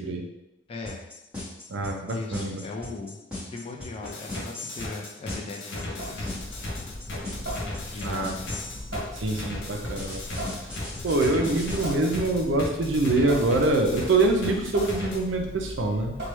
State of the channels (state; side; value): normal; both; correlation 0.37